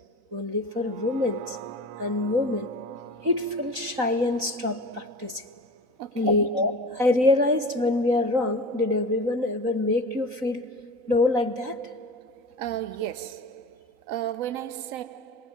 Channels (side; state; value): left; late; 3.9 ms